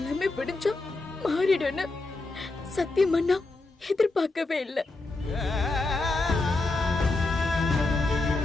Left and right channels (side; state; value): right; quieter; 3.2 dB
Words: விடிஞ்சா மாறிடும்னு சத்தியமா நான் எதிர்பார்க்கவே இல்லை.